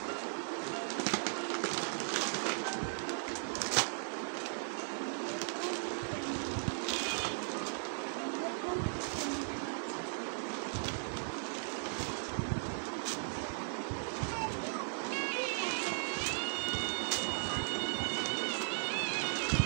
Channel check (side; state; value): left; silent; 53 dB below the other